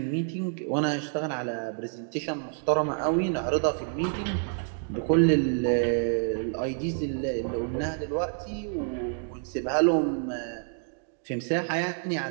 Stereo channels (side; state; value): left; silent; 57 dB below the other